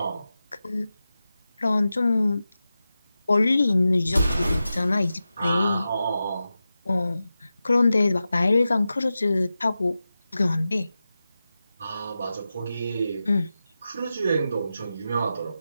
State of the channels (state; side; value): inverted; both; correlation -0.93